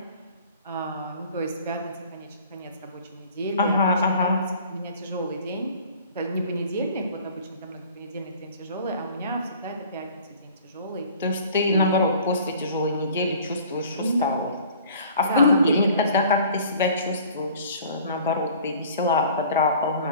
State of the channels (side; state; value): both; inverted; correlation -0.49